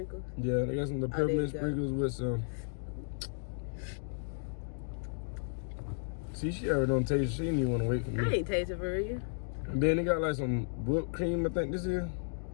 Yeah, they got some little peppermint sprinkles with some. See, she already don't taste. She didn't even want to wait for me. I ain't tasting for real. And then they got like some whipped cream, I think this is.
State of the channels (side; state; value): right; silent; digital silence